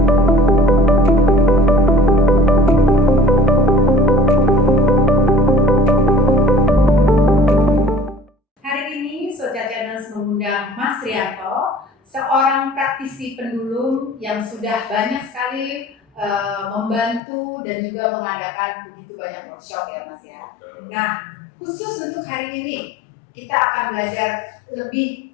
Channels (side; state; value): right; drops out; at 17.2 s